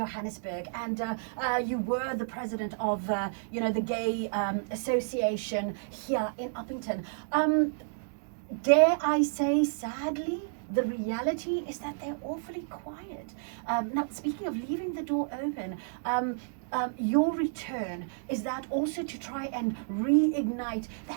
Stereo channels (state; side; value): silent; left; digital silence